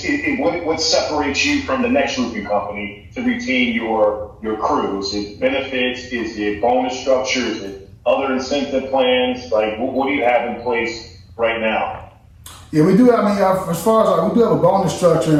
what separates you from the next roofing company to retain your crew? Is it benefits? Is it bonus structure? Is it other incentive plans? Like, what do you have in place right now? Yeah, we do. I mean, as far as we do have a bonus structure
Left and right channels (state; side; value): identical; both; correlation 1.00